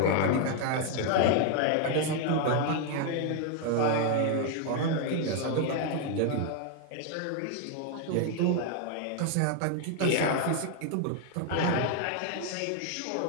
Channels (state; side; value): different; both; correlation 0.01